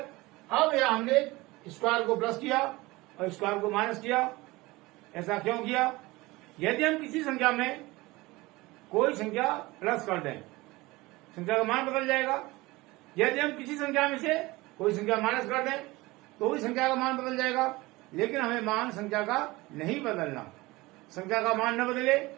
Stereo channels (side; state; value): left; quieter; 21.1 dB